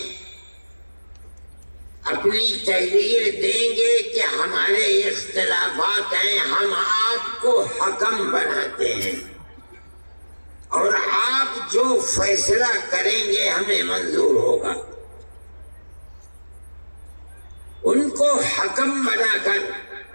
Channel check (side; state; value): both; inverted; correlation -1.00